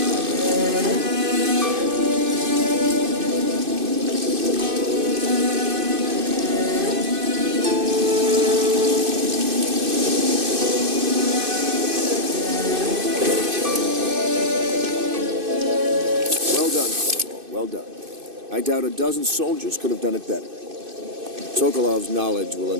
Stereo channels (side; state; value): left; late; 2.5 ms